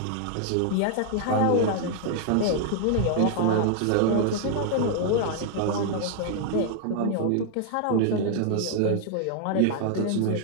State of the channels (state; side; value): different; both; correlation 0.00